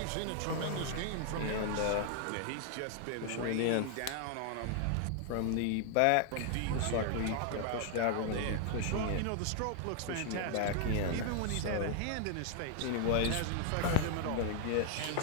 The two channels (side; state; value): both; different; correlation 0.00